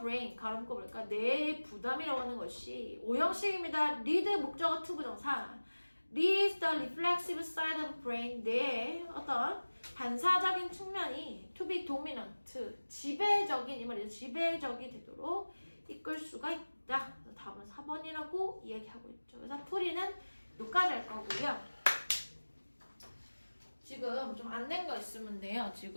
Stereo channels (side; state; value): both; inverted; correlation -1.00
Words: 가로 묶어볼까? 뇌의 부담이라고 하는 것이 오형식입니다. lead 목적어 to 부정사 leads the reflexive side of the brain 뇌의 어떤 반사적인 측면이 to be dominant 지배적인 이 말이죠. 지배적이 되도록 이끌 수가 있다. 답은 4번이라고 이야기하고 있죠. 그래서 풀이는 여기까지 할 거고요. 지금 좀 안 낸 거 있으면 돼요.